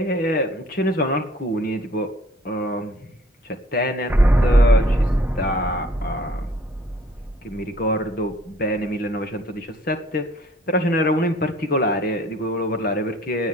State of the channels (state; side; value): normal; both; correlation 0.57